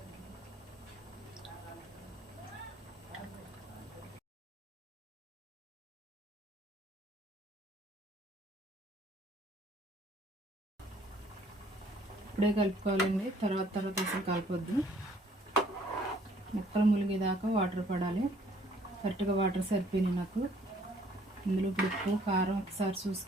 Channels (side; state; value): both; normal; correlation 0.60